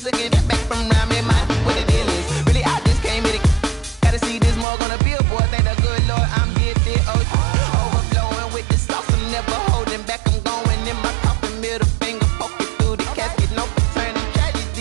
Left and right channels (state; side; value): drops out; left; at 4.7 s